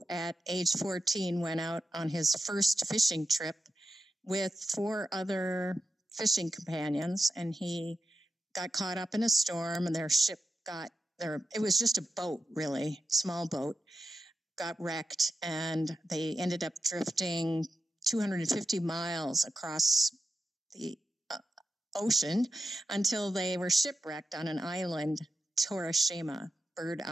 at age 14, went out on his first fishing trip with 4 other fishing companions, and he got caught up in a storm, and their ship it was just a boat, really, small boat, got wrecked, and they ended up drifting 250 miles across the ocean until they were shipwrecked on an island, Torishima, Bird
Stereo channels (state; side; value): normal; both; correlation 0.90